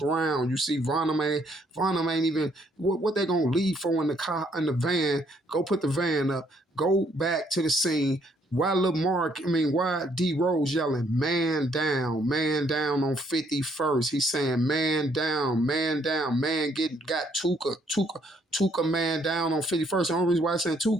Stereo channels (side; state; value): both; normal; correlation 0.68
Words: You see, Vaughn ain't even, what they gonna leave for in the car, in the van? Go put the van up. Go back to the scene. Why why D Rose yelling, man down on 51st? He's saying, man down, man got Tuka man down on 51st. The only reason why I'm saying